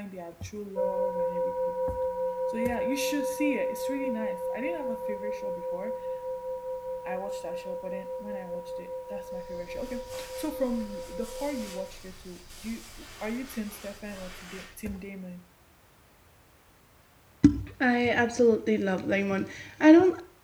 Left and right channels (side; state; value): both; identical; correlation 1.00